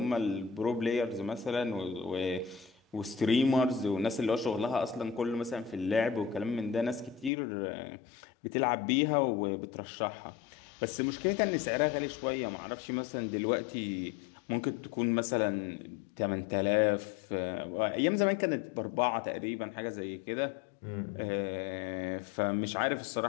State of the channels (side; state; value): right; drops out; at 7.3 s